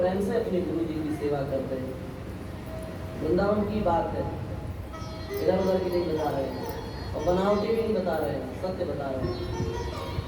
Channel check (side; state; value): both; identical; correlation 1.00